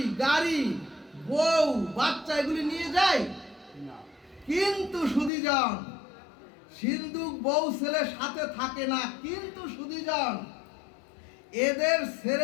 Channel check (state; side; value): drops out; right; at 5.3 s